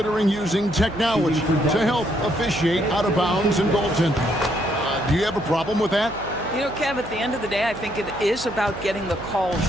using technology to help officiate out of bounds and goaltending. Do you have a problem with that? You know, Kev, at the end of the day, I think it is about getting the calls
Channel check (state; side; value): noise; right; hum, 14 dB below the sound